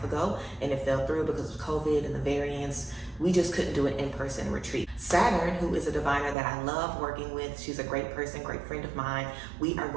ago and it fell through because of COVID and the variants. We just couldn't do an in-person retreat. Saturn, who is a diviner that I love working with, she's a great person, great friend of mine. We are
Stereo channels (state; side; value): drops out; left; at 6.4 s